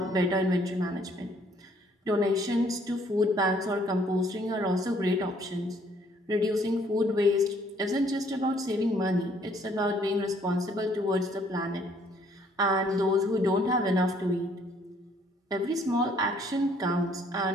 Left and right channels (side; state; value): both; normal; correlation 0.63